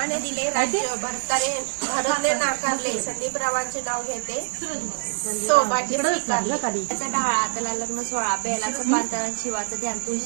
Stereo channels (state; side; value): silent; left; digital silence